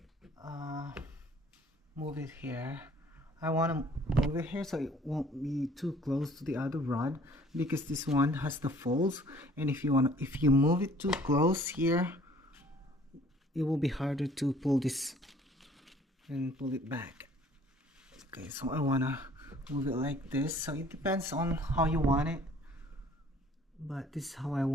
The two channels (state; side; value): normal; both; correlation 0.55